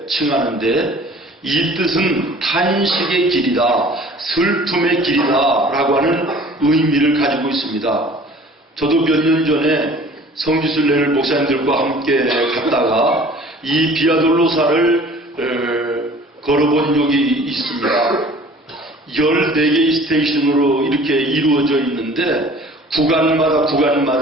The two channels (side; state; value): both; normal; correlation 0.48